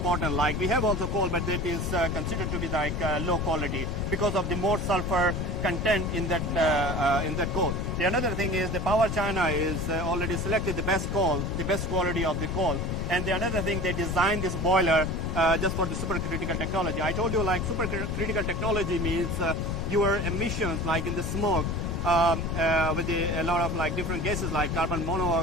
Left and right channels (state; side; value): noise; left; rumble, 1 dB below the sound